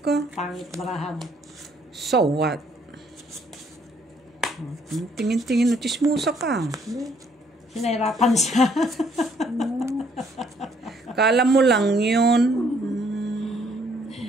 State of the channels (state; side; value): normal; both; correlation 0.66